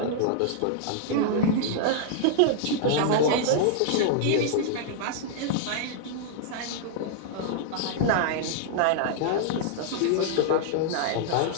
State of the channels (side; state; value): both; different; correlation -0.01